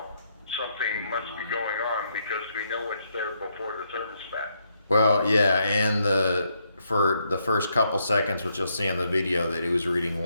something must be going on because we know it's there before the thermostat. Well, yeah, and for the first couple seconds, which you'll see in the video, that it was reading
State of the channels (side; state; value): both; inverted; correlation -0.77